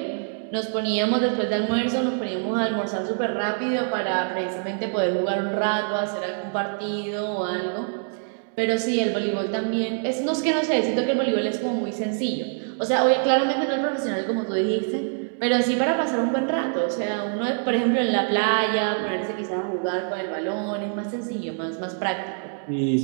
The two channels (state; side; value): silent; left; 61 dB below the other